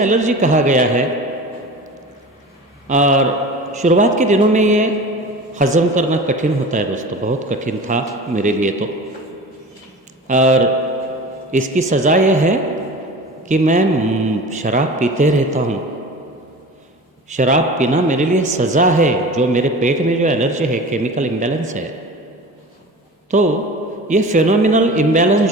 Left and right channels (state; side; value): normal; both; correlation 0.36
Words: एलर्जी कहा गया है। और शुरुआत के दिनों में ये हज़म करना कठिन होता है दोस्तों, बहुत कठिन था मेरे लिए तो। और इसकी सज़ा यह है कि मैं शराब पीते रहता हूँ। शराब पीना मेरे लिए सज़ा है, जो मेरे पेट में जो एलर्जी है, केमिकल इम्बैलेंस है। तो ये फेनोमिनल इम्बैलेंस